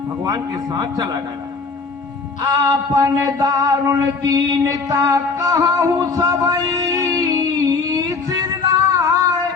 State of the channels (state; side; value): quieter; right; 4.4 dB